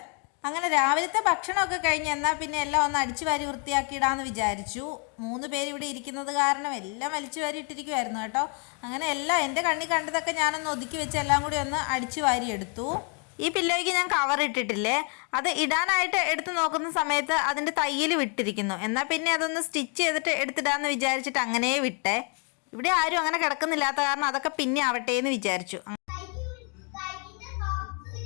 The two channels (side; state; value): right; quieter; 37.9 dB